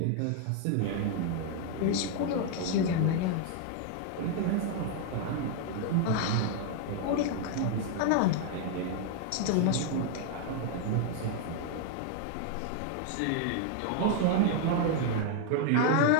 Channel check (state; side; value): different; both; correlation 0.00